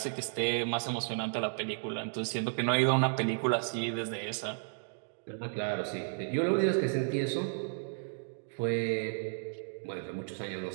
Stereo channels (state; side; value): silent; left; digital silence